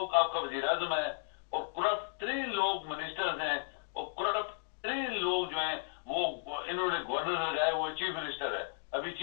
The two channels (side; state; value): right; silent; digital silence